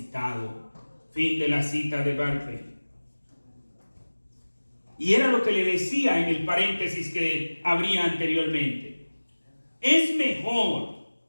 Fin de la cita de Barclay. Y era lo que le decía en el paréntesis que abría anteriormente. Es mejor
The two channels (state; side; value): inverted; both; correlation -1.00